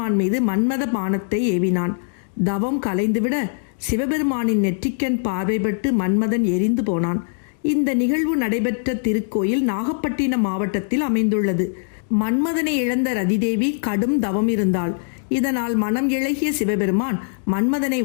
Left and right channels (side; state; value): right; silent; digital silence